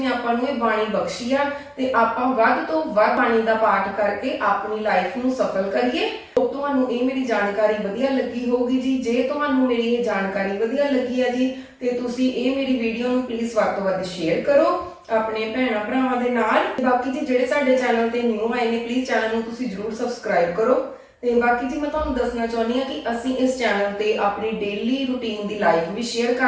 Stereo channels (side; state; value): both; identical; correlation 1.00